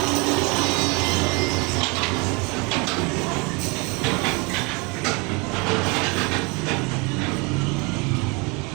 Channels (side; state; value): left; quieter; 29.2 dB